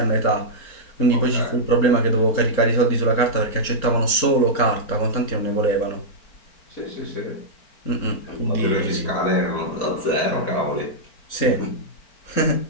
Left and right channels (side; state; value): right; late; 4.4 ms